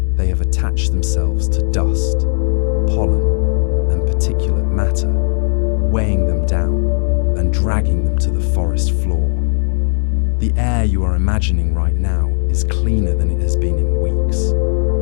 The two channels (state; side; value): silent; right; 60 dB below the other